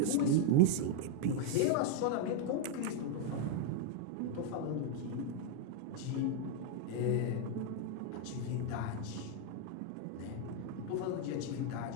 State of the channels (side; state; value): both; different; correlation 0.00